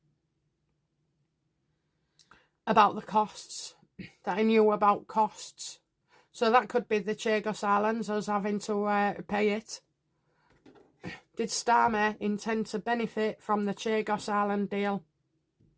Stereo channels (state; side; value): identical; both; correlation 1.00